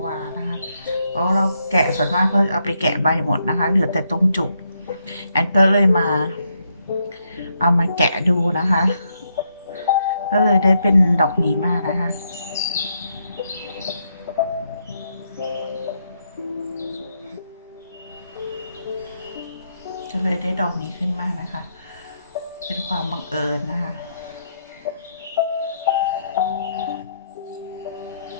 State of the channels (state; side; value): inverted; both; correlation -0.78